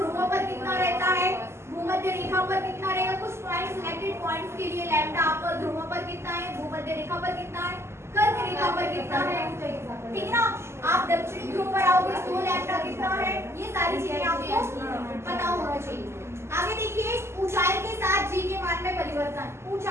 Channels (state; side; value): late; left; 0.13 ms